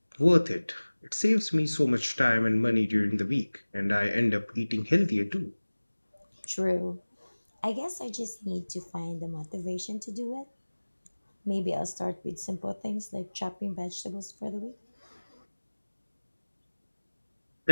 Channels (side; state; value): both; inverted; correlation -1.00